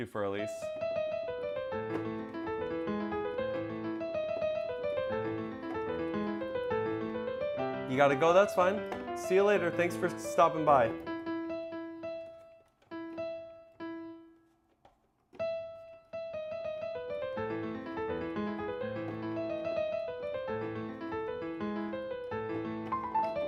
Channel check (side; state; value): both; identical; correlation 1.00